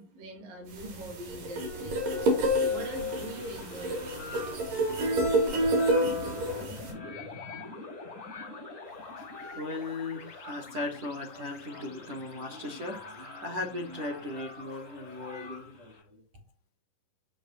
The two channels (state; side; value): late; left; 11 ms